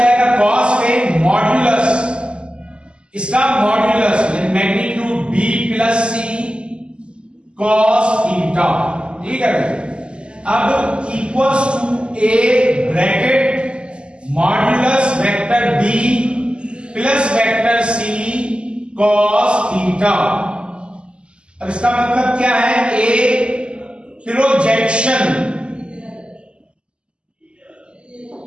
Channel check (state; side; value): late; left; 0.051 ms